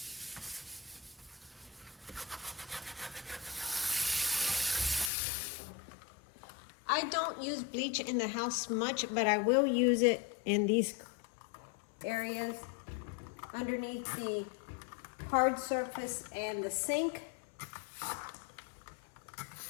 I don't use bleach in the house much, but I will use it in these areas underneath the hard surface and the sink,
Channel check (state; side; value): drops out; right; at 5.1 s